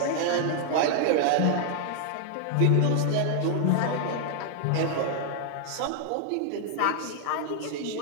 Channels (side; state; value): both; different; correlation -0.01